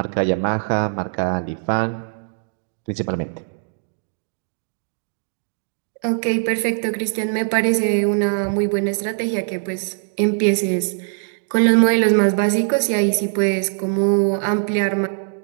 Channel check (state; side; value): silent; left; digital silence